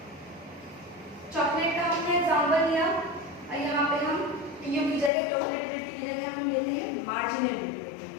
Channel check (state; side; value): drops out; right; at 5.1 s